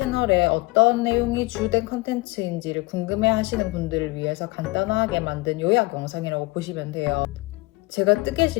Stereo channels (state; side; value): quieter; right; 23.2 dB